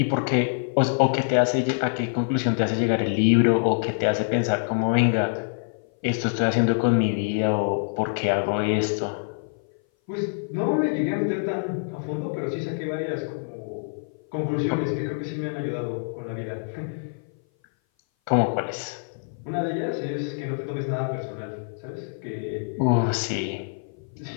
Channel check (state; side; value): silent; right; 57 dB below the other